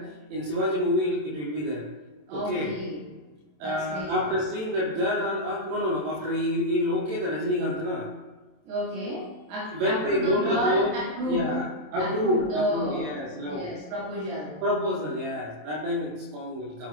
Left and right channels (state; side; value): late; left; 27 ms